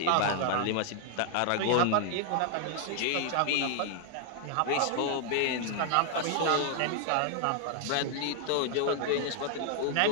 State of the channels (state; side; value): different; both; correlation 0.00